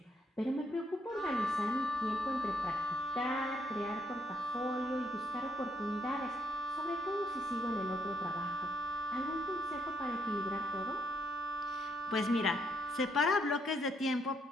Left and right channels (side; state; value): both; normal; correlation 0.73